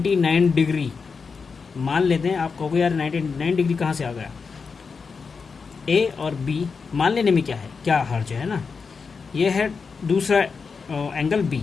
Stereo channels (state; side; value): quieter; right; 5.2 dB